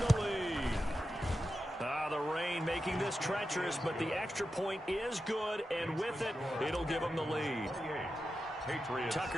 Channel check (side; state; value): both; normal; correlation 0.90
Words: the lead. The rain making this treacherous, but the extra point is good, and with it, it'll give them the lead.